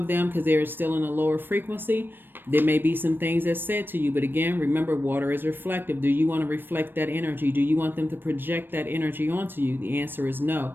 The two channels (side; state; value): left; late; 0.096 ms